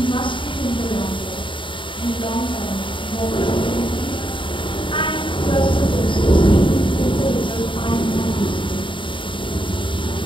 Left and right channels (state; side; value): late; right; 0.24 ms